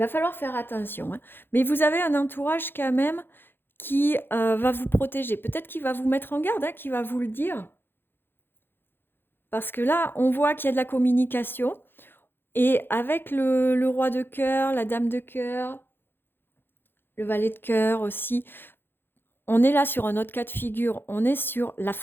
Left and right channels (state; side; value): late; right; 0.10 ms